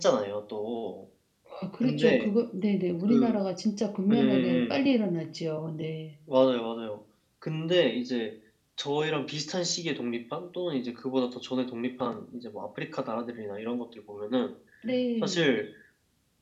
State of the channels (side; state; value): both; identical; correlation 1.00